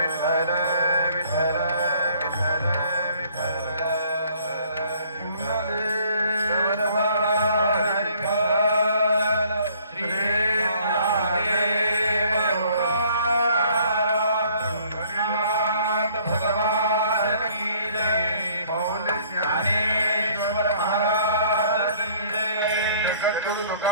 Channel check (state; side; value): inverted; both; correlation -0.59